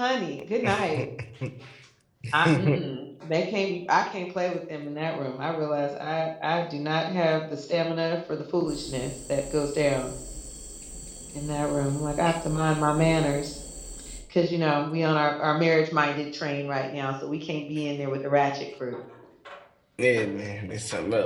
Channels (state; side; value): identical; both; correlation 1.00